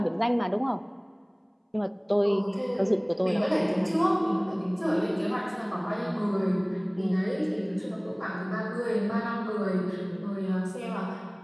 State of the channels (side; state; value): both; identical; correlation 1.00